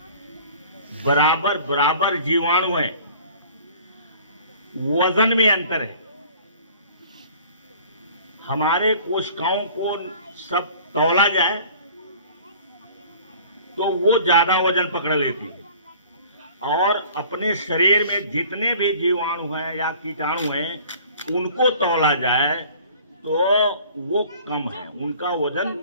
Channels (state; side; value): inverted; both; correlation -0.48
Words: बराबर बराबर जीवाणु है। वजन में अंतर है। हमारे कोशिकाओं को सब तौला जाए तो वो ज्यादा वजन पकड़ लेती है, और अपने शरीर में जितने भी जीवाणु हैं या कीटाणु हैं, उनको तौला जाए तो वो कम है, उनका वजन